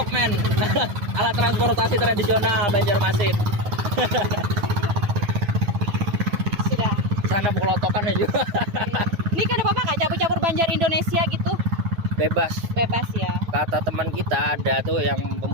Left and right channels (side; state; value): left; late; 9.4 ms